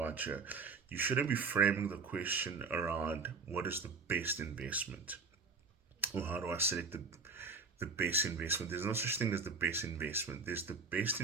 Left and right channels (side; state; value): left; quieter; 4.5 dB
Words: here? You shouldn't be framing the question around what is the best investment or how do I select the best investment. There's no such thing as the best investment, there's the best